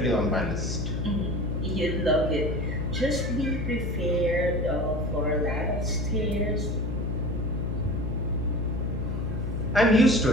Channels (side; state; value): left; noise; hum, 2 dB below the sound